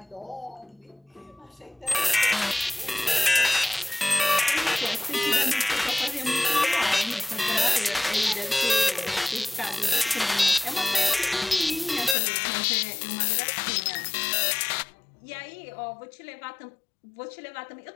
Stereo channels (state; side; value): drops out; right; at 12.2 s